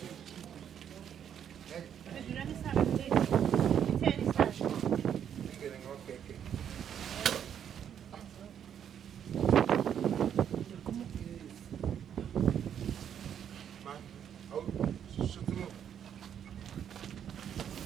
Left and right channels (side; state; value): left; quieter; 9.0 dB